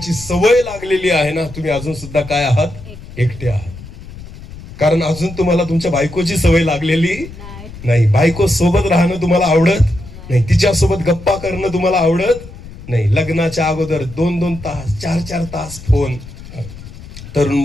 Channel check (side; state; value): left; noise; rumble, 15 dB below the sound